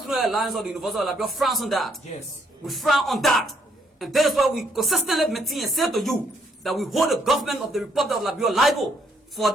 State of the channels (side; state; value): both; normal; correlation 0.71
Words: Alliance of the University of Liberia frowns on that. Yes. We frown on that. And that is why we consistently maintain and say to you that we hold the government of the Republic of Liberia liable for